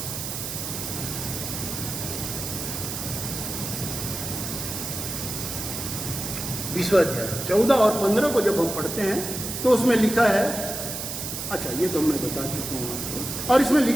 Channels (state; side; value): noise; right; hiss, 5 dB below the sound